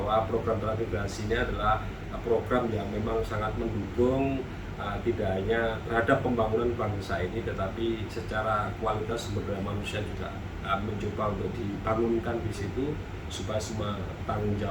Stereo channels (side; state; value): both; identical; correlation 1.00